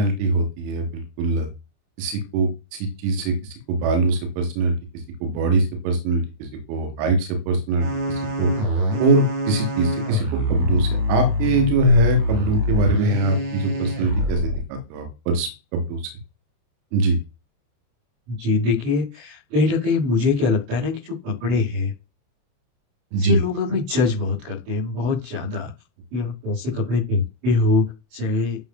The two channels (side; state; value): left; late; 27 ms